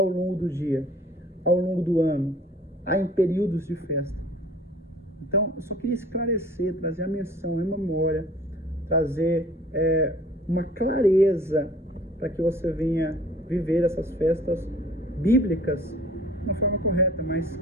longo do dia, ao longo do ano, em períodos de festa. Então, eu só queria esclarecer, trazer a menção em memória, trazer uma clareza para que você venha viver essas festas bíblicas de uma forma correta, mas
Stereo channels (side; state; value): both; normal; correlation 0.50